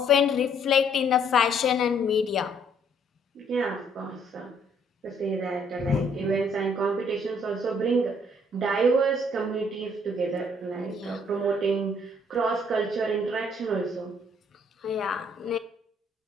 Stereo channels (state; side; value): normal; both; correlation 0.64